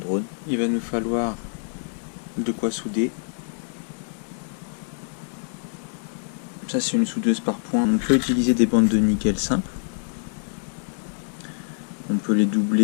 Il va nous falloir de quoi souder. Ça, c'est une soudeuse par point. On peut utiliser des bandes de nickel simples. On peut les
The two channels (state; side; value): silent; right; digital silence